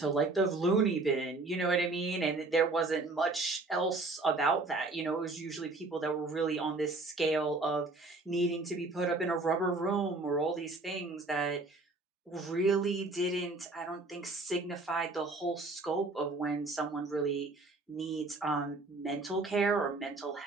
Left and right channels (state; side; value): quieter; left; 3.3 dB